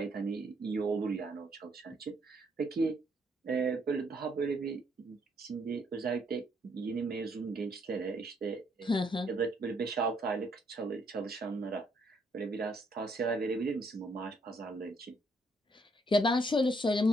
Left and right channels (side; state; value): both; normal; correlation 0.70